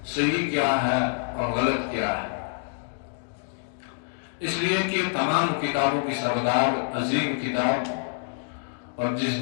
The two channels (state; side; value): silent; right; digital silence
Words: صحیح کیا ہے اور غلط کیا ہے. اس لیے کہ تمام کتابوں کی سردار عظیم کتاب، اور جس